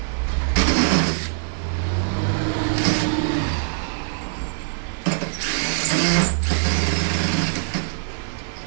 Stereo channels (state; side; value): silent; left; 64 dB below the other